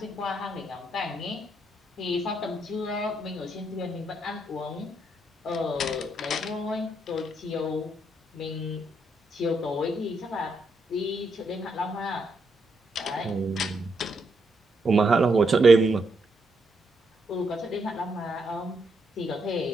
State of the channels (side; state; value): both; normal; correlation 0.78